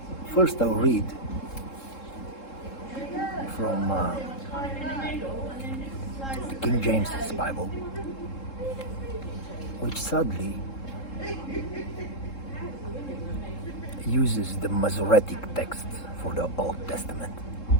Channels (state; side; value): late; right; 3.7 ms